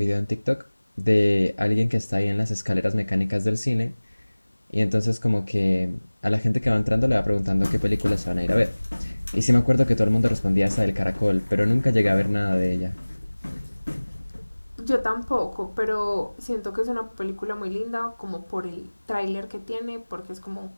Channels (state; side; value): inverted; both; correlation -1.00